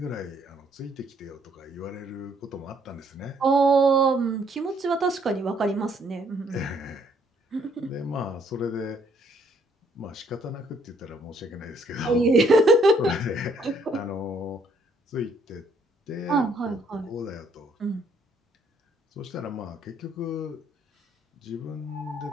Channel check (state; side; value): normal; both; correlation 0.67